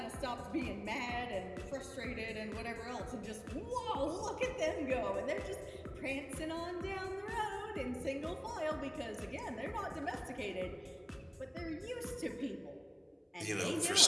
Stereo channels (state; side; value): identical; both; correlation 1.00